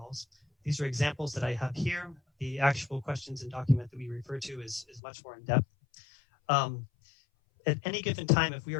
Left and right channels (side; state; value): right; drops out; at 5.0 s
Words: These are examples that I have here. The actual questions and document that we refer to is much more in depth. At any given time, if we